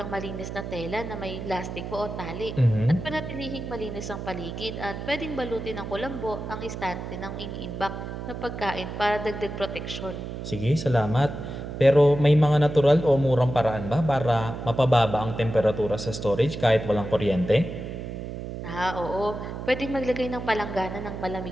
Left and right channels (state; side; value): noise; right; hum, 7 dB below the sound